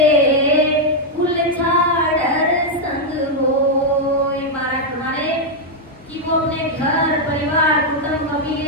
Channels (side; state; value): both; normal; correlation -0.02